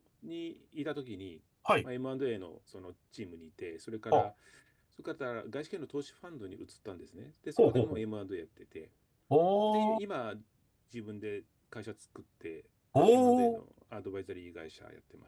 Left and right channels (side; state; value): both; identical; correlation 1.00